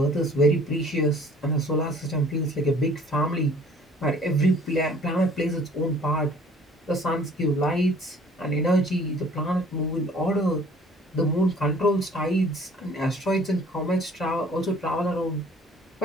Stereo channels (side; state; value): both; normal; correlation 0.53